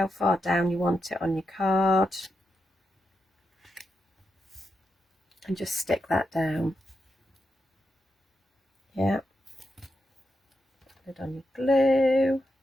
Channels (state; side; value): normal; both; correlation 0.86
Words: far down you want it on your card, and just stick that down. Yeah. Put it on your glue.